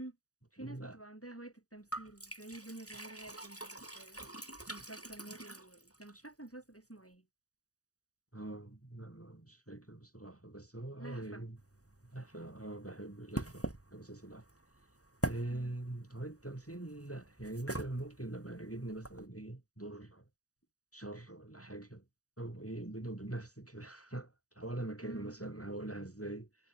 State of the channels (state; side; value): late; right; 0.66 ms